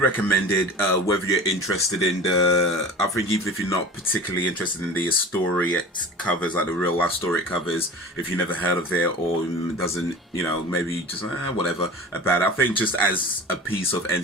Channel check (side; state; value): both; normal; correlation 0.37